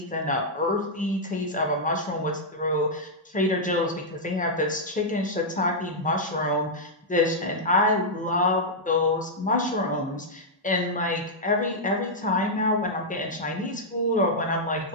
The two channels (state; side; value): normal; both; correlation -0.06